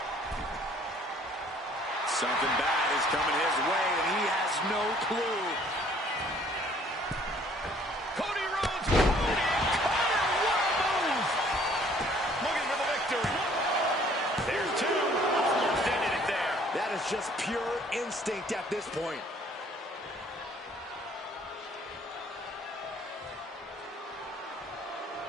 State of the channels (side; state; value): both; normal; correlation 0.58